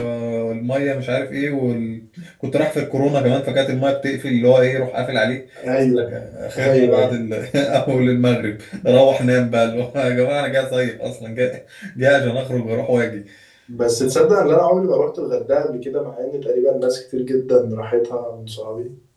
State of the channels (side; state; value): both; identical; correlation 1.00